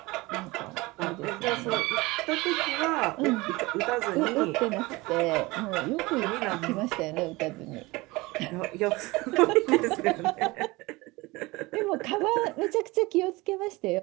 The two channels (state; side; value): quieter; left; 22.3 dB